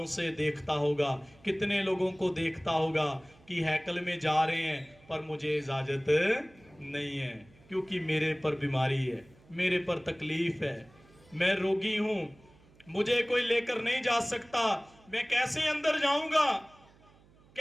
से देखता होगा, कितने लोगों को देखता होगा कि हैकल में जा रहे हैं, पर मुझे इजाजत नहीं है क्योंकि मेरे पर बीमारी है, मेरे पर तकलीफ है, मैं रोगी हूं, मुझे कोई लेकर नहीं जा सकता, मैं कैसे अंदर जाऊंगा,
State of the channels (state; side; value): noise; right; hum, 28 dB below the sound